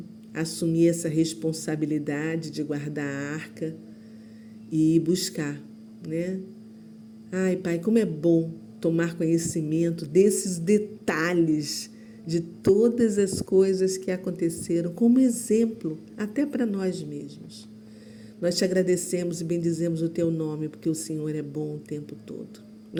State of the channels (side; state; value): both; identical; correlation 1.00